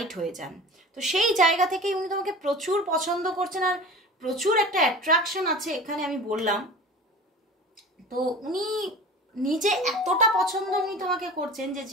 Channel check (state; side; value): normal; both; correlation 0.37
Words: হয়ে যান। তো সেই জায়গা থেকেই উনি তোমাকে প্রচুর পছন্দ করছেন আর প্রচুর একটা অ্যাট্রাকশন আছে এখানে, আমি বললাম। তো উনি নিজে এতটা পছন্দ উনি তোমাকে করছেন যে